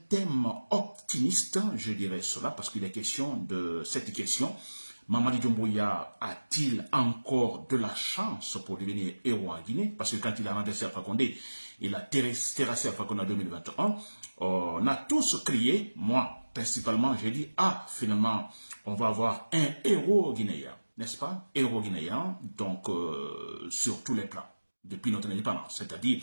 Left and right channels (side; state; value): both; inverted; correlation -1.00